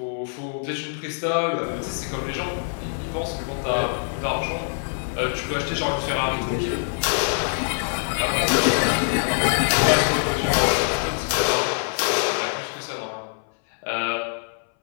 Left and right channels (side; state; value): right; silent; 61 dB below the other